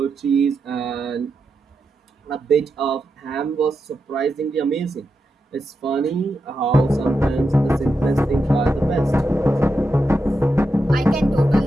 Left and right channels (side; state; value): both; normal; correlation 0.87